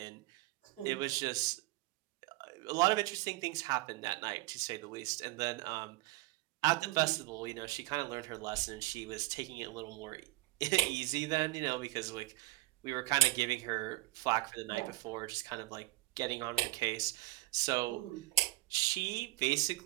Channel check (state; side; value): quieter; left; 20.2 dB